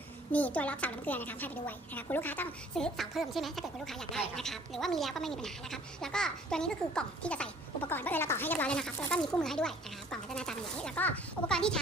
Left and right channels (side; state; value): both; normal; correlation 0.55